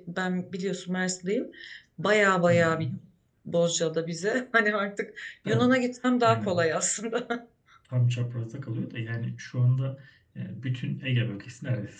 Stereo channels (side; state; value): both; identical; correlation 1.00